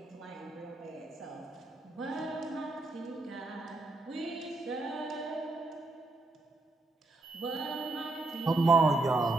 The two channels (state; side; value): quieter; left; 3.1 dB